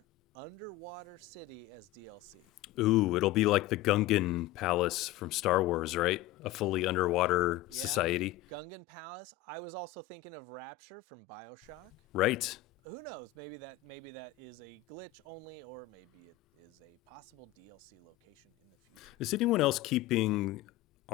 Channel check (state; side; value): quieter; right; 14.6 dB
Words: underwater city as DLC? Ooh, it'll be like the Gungan Palace from Star Wars, right? A fully underwater society. Gungan Palace. I was also thinking of Rapture from BioShock. Right. Who knows? Maybe that is a glitch only, or maybe it is a possible DLC location in the future. Is anyone else keeping